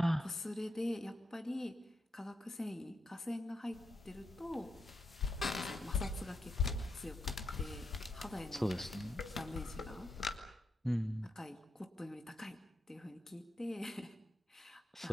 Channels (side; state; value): both; normal; correlation 0.84